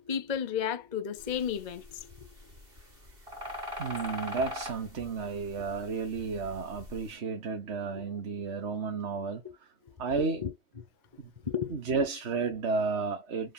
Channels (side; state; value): left; late; 2.7 ms